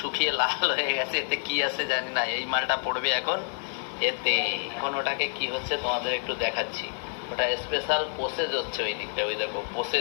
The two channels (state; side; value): silent; right; digital silence